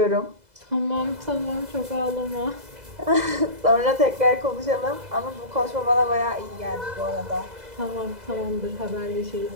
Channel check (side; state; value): left; late; 2.0 ms